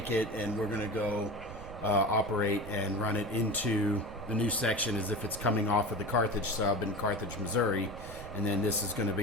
it, and we're going to go operate and run it into the new section as if it's coming off of the Carthage sub in Carthage, Missouri, and then this is going to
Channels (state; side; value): noise; right; rumble, 13 dB below the sound